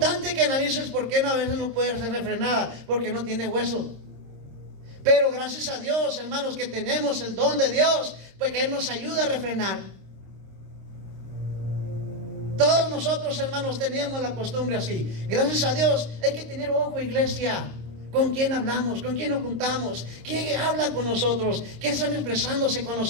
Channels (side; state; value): left; late; 26 ms